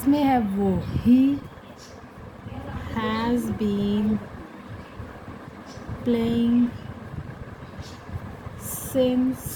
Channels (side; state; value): both; identical; correlation 1.00